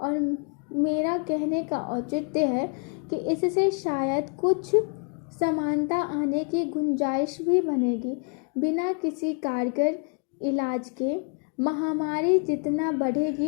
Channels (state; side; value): quieter; right; 38.4 dB